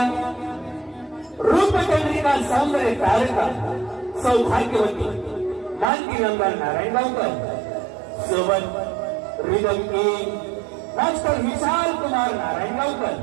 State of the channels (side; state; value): left; drops out; at 5.9 s